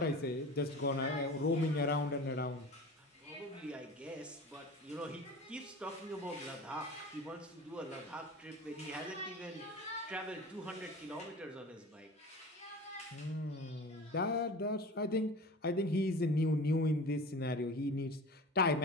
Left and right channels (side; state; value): both; normal; correlation 0.36